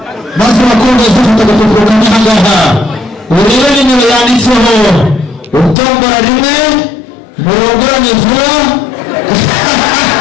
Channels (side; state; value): right; drops out; at 5.8 s